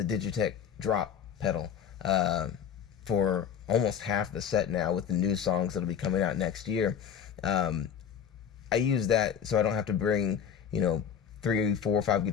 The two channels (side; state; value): right; quieter; 8.1 dB